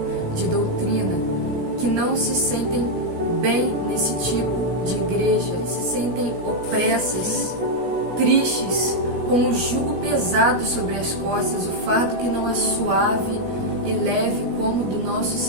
de doutrina, que não se sentem bem nesse tipo de igreja, se sentem opressas, tristes, com o jugo pesado sobre as costas, o fardo que não é suave e leve como o do nosso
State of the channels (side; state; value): left; late; 17 ms